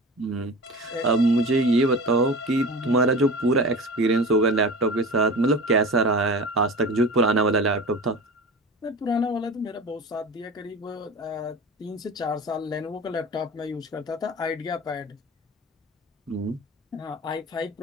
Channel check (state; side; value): normal; both; correlation 0.33